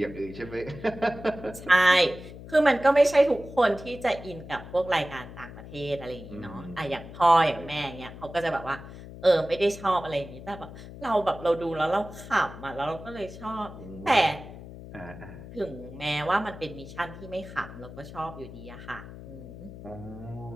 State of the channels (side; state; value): left; noise; hum, 14 dB below the sound